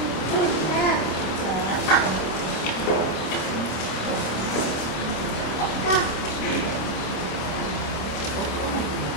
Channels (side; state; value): right; late; 26 ms